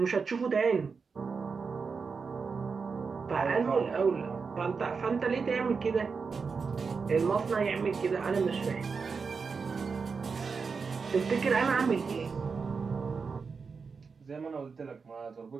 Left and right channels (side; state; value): left; quieter; 5.2 dB